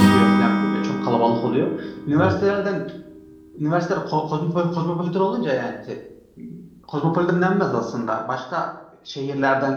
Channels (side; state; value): both; identical; correlation 1.00